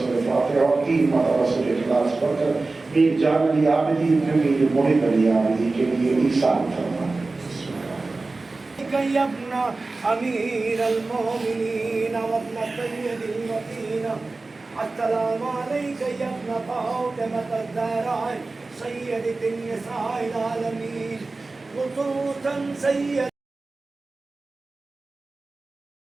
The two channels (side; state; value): left; quieter; 3.5 dB